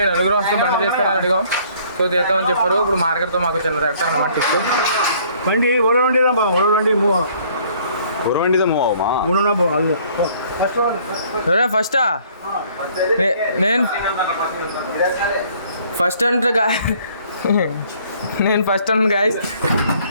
వస్తే బండి తీస్తారని అడిగాం. సో తీస్తామని చెప్పారు. ఇప్పుడు మార్కెట్తో మాకు చిన్న తెస్తాను అన్నమాట టిక్కు బండి ఫస్టా నేను ఫస్ట్ అంటే నేను ఫస్ట్ అన్నాను గాయస్.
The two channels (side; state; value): both; inverted; correlation -0.59